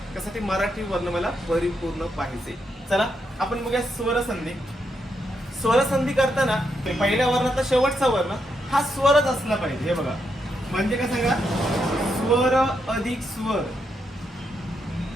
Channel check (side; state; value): both; normal; correlation 0.81